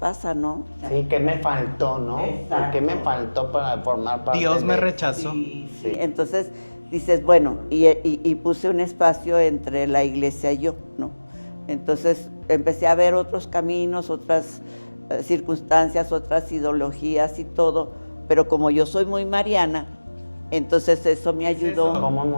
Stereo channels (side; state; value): both; inverted; correlation -1.00